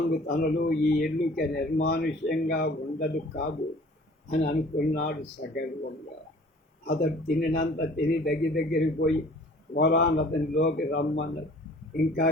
తనలో ఈ ఇల్లుకి నిర్మానుష్యంగా ఉండదు కాదు అని అనుకున్నాడు సగర్వంగా. అతడు తినినంత తిని దగ్గరికి పోయి ఒలాన్ అతనిలోకి రమ్మన్నాడు. ఇంకా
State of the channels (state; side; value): normal; both; correlation 0.50